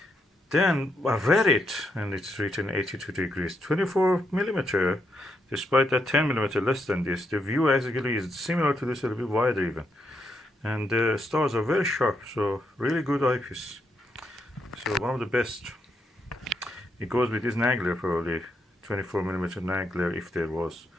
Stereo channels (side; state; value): both; normal; correlation 0.79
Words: Then I read it, and it's written 82 degrees, 24mm. Despite that 10mm less than this, the view actually is similar to this, a little bit wider even. And the stars are very sharp, so really good eyepiece. So one of the best. It goes with this Nagler probably, 24mm Nagler if there was